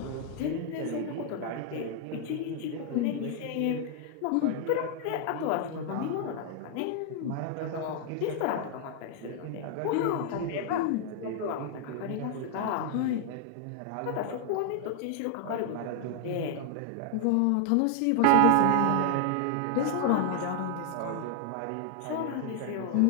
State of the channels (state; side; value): different; both; correlation 0.00